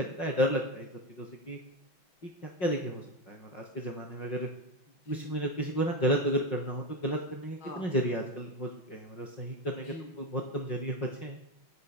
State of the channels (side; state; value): right; late; 5.5 ms